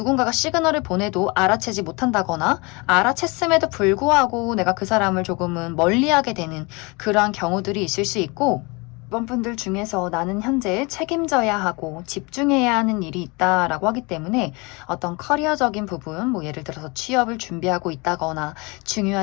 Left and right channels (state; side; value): quieter; right; 27.6 dB